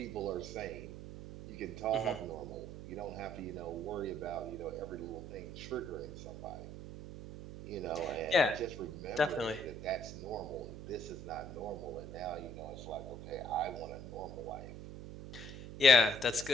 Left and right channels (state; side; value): noise; right; hum, 10 dB below the sound